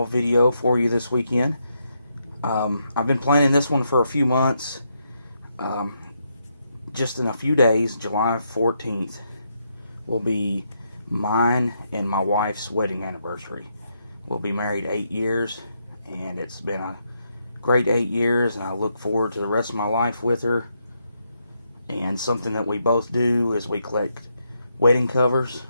video for you this weekend. I've been planning this one for a few months. Um, just in a few days, July 14th, will be mine and my wife's wedding anniversary. We'll be married 8 years, and it's been a great 8 years, and I look forward to the rest of my life with her. And something that we both do is we collect wedding covers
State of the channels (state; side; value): inverted; both; correlation -0.79